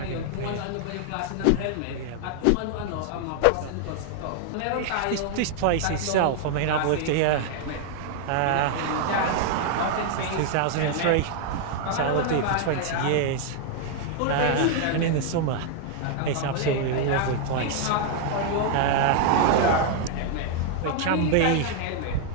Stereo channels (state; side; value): different; both; correlation 0.00